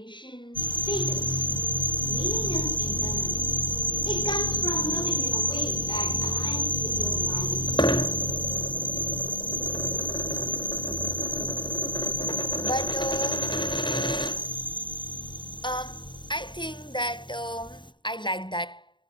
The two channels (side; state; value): right; late; 0.23 ms